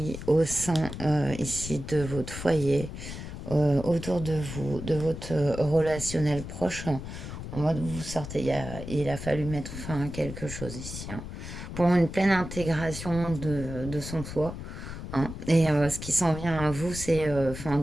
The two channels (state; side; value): noise; left; rumble, 9 dB below the sound